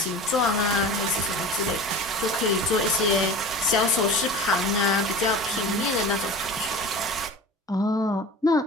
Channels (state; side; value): normal; both; correlation 0.35